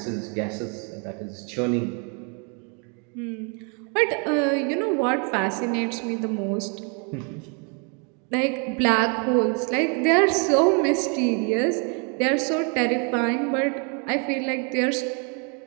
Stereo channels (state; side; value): quieter; left; 36.8 dB